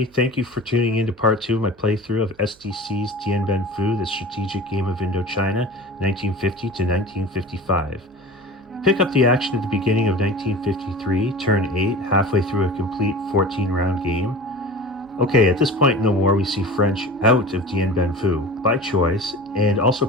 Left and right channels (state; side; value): noise; right; hum, 29 dB below the sound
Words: thank you for tuning in to part 2 of my playthrough of S.D.C's Dien, the strategic game of Indochina, 1950 to 1955. Pick up the action at the beginning of 1953, turn 8, halfway through a complete 14-round game. Okay, at this point in the war we see French out of Dien by choice, and also